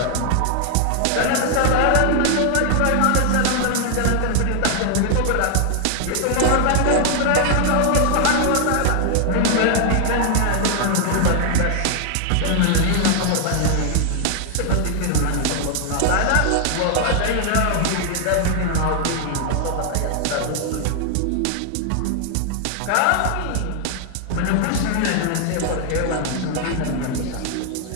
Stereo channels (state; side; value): different; both; correlation 0.00